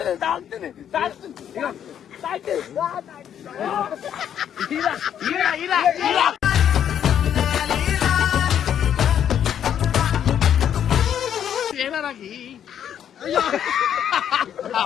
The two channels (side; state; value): right; quieter; 9.4 dB